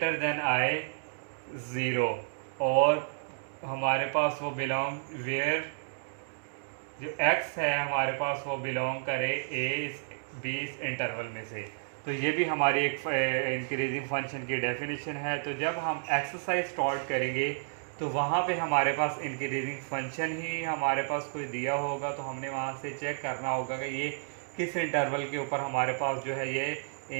देन आए 0, और हमारे पास वो बिलोंग वेयर जो x है हमारे पास वो बिलोंग करे b इस इंटरवल में से। तो ये भी हमारी एक इंक्रीजिंग फंक्शन की डेफिनेशन है। तो जब हम एक्सरसाइज स्टार्ट करेंगे तो वहाँ पे हमारे पास इंक्रीजिंग फंक्शन ही हमारे पास कोई दिया होगा, तो हमने वहाँ से चेक करना होगा कि ये किस इंटरवल के ऊपर हमारे पास जो है ये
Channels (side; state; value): left; silent; digital silence